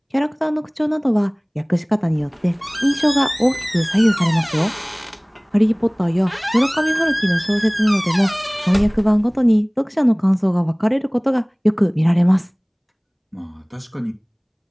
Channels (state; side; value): identical; both; correlation 1.00